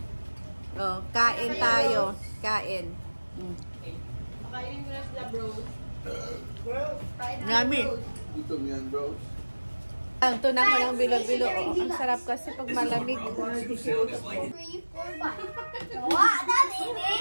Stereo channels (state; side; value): inverted; both; correlation -1.00